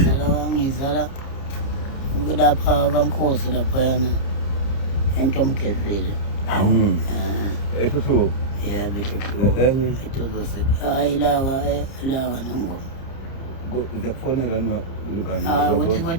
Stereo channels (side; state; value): right; late; 30 ms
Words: ngizala lapha kaNkosi laphayana entomgezile esho yebo enye etozose hayi laka nengoma uyakufonela hayi ukuthi